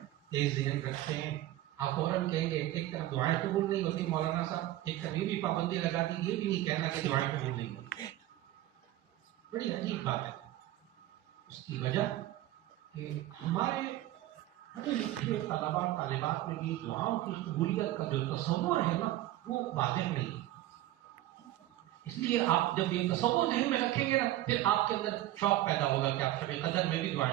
تیز ذہن رکھتے ہیں, آپ فوراً کہیں گے ایک طرف دعائیں قبول نہیں ہوتی مولانا صاحب, ایک طرف یہ بھی پابندی لگا دی, یہ بھی نہیں کہنا کہ دعائیں قبول نہیں ہوتی. بڑی عجیب بات ہے. اس کی وجہ کہ ہمارے پڑھے لکھے طلباء طالبات میں بھی دعاؤں کی قبولیت کا جو تصور ہے نا وہ واضح نہیں ہے. اس لیے آپ جب یہ تصور ذہن میں رکھیں گے نا پھر آپ کے اندر شوق پیدا ہوگا کہ آپ شب قدر میں بھی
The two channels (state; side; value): quieter; left; 14.9 dB